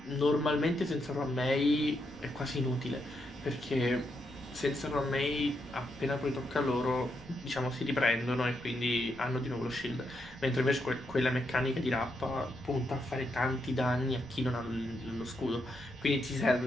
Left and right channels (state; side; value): noise; left; rumble, 26 dB below the sound